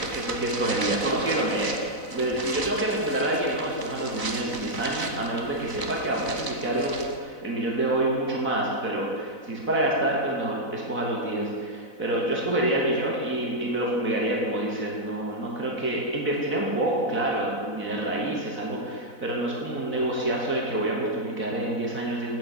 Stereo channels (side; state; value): right; late; 4.0 ms